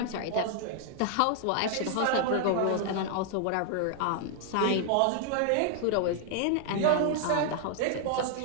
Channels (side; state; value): both; different; correlation -0.01